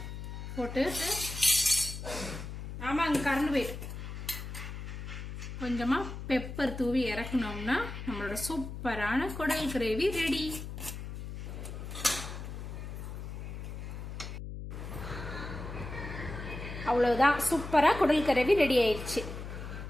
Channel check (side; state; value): left; noise; hum, 8 dB below the sound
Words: போட்டு, ஆமாங்க கரண்ட் போயிட்டு, கொஞ்சமா பெப்பர் தூவி இறக்கணும்னா நம்மளோட சூப்பரான குடல் கிரேவி ரெடி. அவ்வளவுதான், சூப்பரா குடல் கிரேவி ரெடி ஆயிடுச்சு.